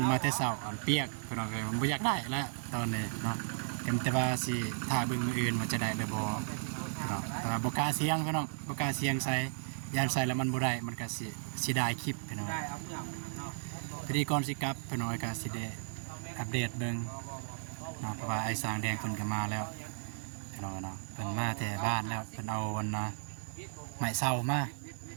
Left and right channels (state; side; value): silent; left; digital silence